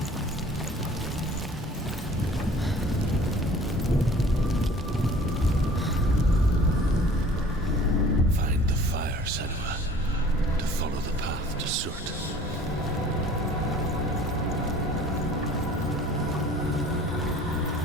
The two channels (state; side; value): normal; both; correlation 0.48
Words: Find the fire, Senua, to follow the path to Surt.